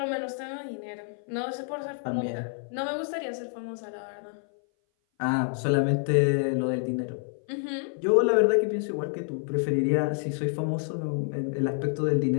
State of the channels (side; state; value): right; silent; 57 dB below the other